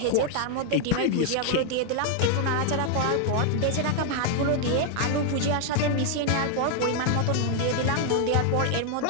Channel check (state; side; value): different; both; correlation 0.00